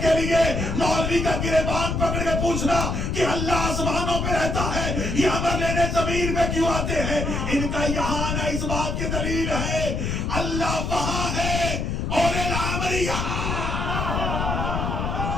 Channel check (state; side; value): noise; left; rumble, 1 dB below the sound